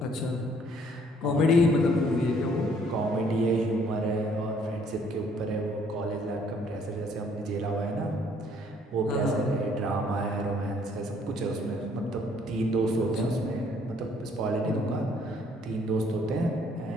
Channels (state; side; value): normal; both; correlation 0.63